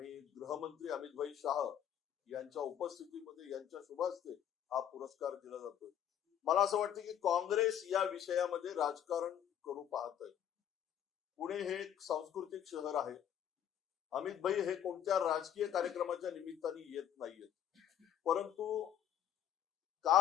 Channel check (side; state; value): right; quieter; 10.0 dB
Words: गृहमंत्री अमित शहा यांच्या उपस्थितीमध्ये यांच्या शुभ हस्ते हा पुरस्कार दिला जातोय. मला असं वाटतं की काँग्रेस या विषयामध्ये राजकारण करू पाहत आहे. पुणे हे एक सांस्कृतिक शहर आहे. अमित हे कोणत्या राजकीय कार्यक्रमाच्या निमित्ताने येत नाहीयेत, परंतु